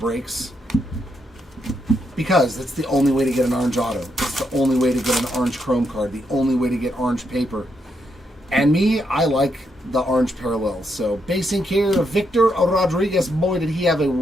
Because it's the only way to get an orange auto. It's the only way to get an orange chrome card. The only way to get orange paper. And me, I like the orange parallels. So, basing here, Victor Rodriguez. Boy, did he have a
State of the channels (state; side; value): normal; both; correlation 0.79